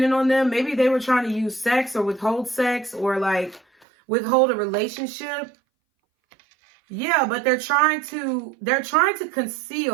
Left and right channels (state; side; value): drops out; left; at 3.9 s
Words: on them. Maybe they were trying to use sex or withhold sex or like withhold a relationship. Yeah, but they're trying to